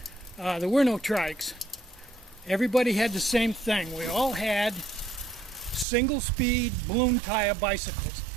there were no trikes. Everybody had the same thing. We all had single-speed balloon tire bicycles.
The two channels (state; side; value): drops out; left; at 5.9 s